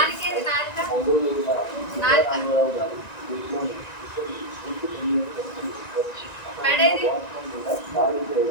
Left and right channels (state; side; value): late; right; 1.9 ms